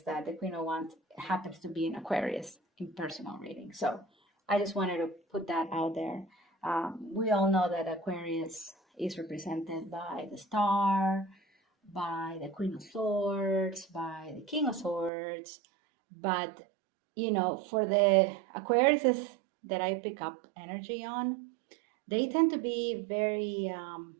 that the Queen of Wands happens to be an Aquarius in personal readings. So I just wanted to put that out there. We all know that Aquarius is represented by the Star, by the Queen of Swords, by the King of Swords. But, for the Aquariuses that I pick up energy on, they tend to be very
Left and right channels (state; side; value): drops out; left; at 15.1 s